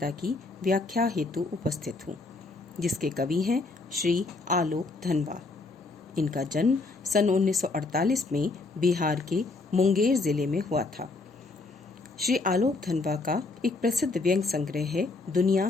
की व्याख्या हेतु उपस्थित हूँ, जिसके कवि हैं श्री आलोक धनवा। इनका जन्म सन 1948 में बिहार के मुंगेर जिले में हुआ था। श्री आलोक धनवा का एक प्रसिद्ध व्यंग संग्रह है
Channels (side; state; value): right; quieter; 3.5 dB